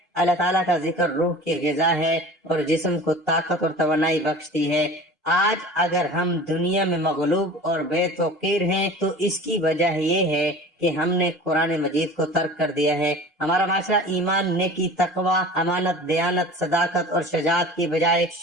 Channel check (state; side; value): normal; both; correlation 0.40